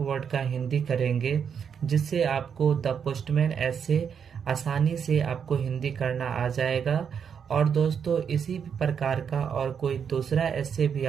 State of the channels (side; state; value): left; quieter; 7.3 dB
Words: का हिंदी करेंगे, जिससे आपको द पोस्टमैन ऐसे आसानी से आपको हिंदी करना आ जाएगा। और दोस्तों इसी प्रकार का और कोई दूसरा ऐसे भी